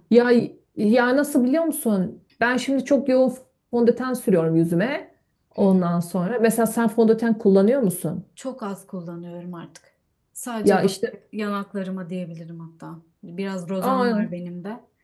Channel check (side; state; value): both; identical; correlation 1.00